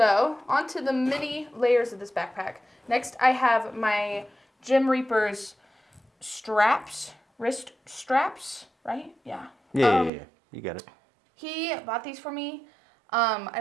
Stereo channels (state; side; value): drops out; left; at 10.1 s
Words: onto the mini layers of this backpack. Next, I have my Gym Reaper's straps, wrist straps, right? Yeah. Yeah. You got it. He bought these for me. I